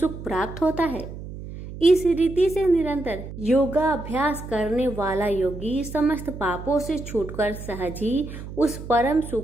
प्राप्त होता है। इस रीति से निरंतर योगाभ्यास करने वाला योगी समस्त पापों से छूटकर सहज ही उस परम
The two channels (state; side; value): noise; right; hum, 11 dB below the sound